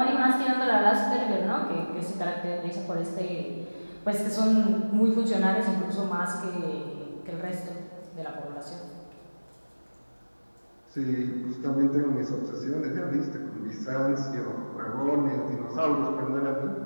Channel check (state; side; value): inverted; both; correlation -1.00